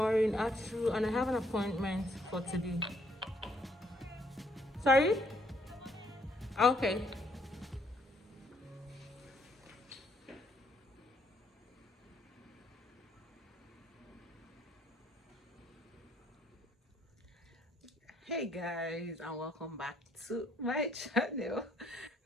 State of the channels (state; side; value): normal; both; correlation 0.69